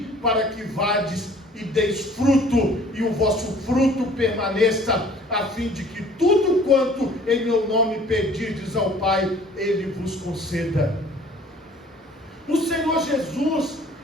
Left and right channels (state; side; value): normal; both; correlation 0.52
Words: para que vades e deis fruto, e o vosso fruto permaneça, a fim de que tudo quanto em meu nome pedirdes ao Pai, Ele vos conceda. O Senhor Jesus,